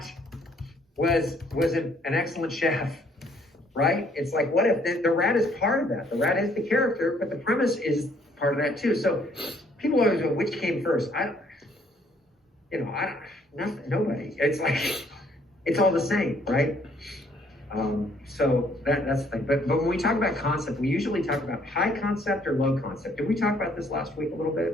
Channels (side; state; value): both; normal; correlation 0.64